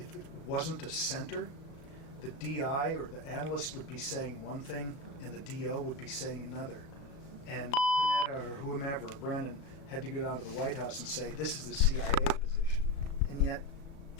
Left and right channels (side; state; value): right; late; 36 ms